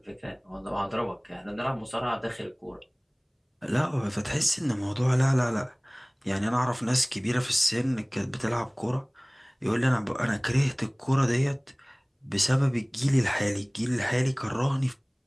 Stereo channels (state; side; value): identical; both; correlation 1.00